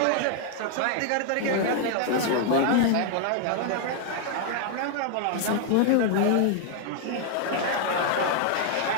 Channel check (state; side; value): different; both; correlation 0.00